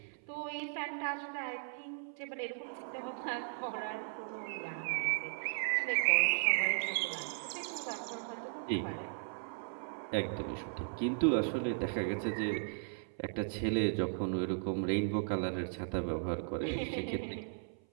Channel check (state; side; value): silent; left; 53 dB below the other